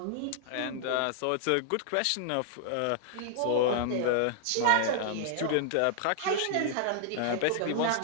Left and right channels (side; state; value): both; different; correlation -0.01